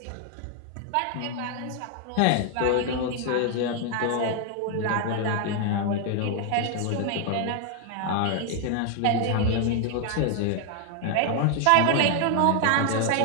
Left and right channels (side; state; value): both; different; correlation 0.00